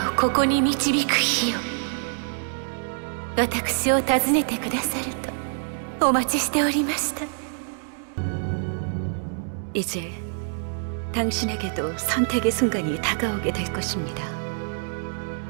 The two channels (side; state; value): left; silent; 61 dB below the other